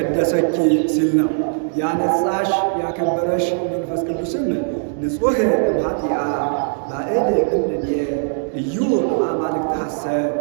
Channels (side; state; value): left; silent; digital silence